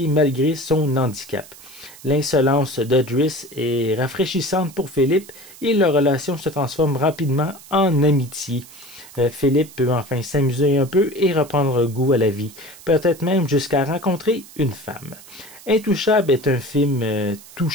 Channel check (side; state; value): right; noise; hiss, 20 dB below the sound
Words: malgré son handicap. L'insolence de Driss est rafraîchissante pour Philippe et leur relation se transforme rapidement en amitié. Philippe peut enfin s'amuser un peu et reprendre goût à la vie, peut-être même jusqu'à rencontrer une femme. Intouchable est un film